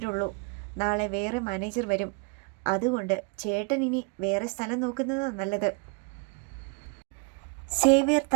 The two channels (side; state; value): left; quieter; 33.7 dB